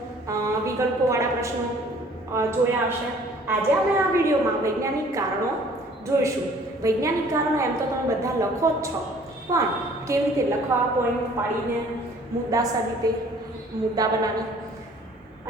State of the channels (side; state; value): both; normal; correlation 0.54